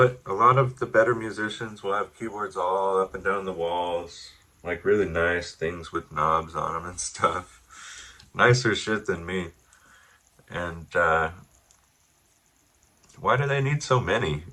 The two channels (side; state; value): both; identical; correlation 1.00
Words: a lot of the better musicians will have keyboards all up and down the walls, like really nice things with knobs on them and stuff. Nicer shit than me. And why do they need so many?